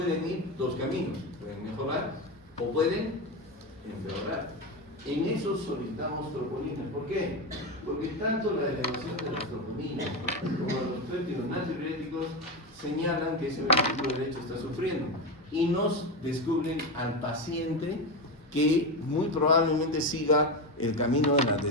ir dos caminos. Pueden mejorar o pueden empeorar. En eso solicitamos troponinas. ¿Por qué? Porque tanto la elevación de las troponinas como los péptidos natriuréticos señalan que ese ventrículo derecho está sufriendo y nos descubren al paciente que muy probablemente siga el camino de la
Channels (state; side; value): normal; both; correlation 0.16